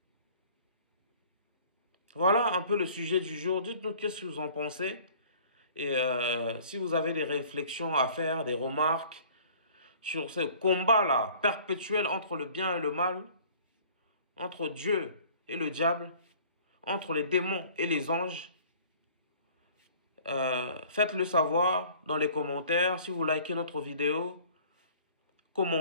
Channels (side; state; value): both; inverted; correlation -0.51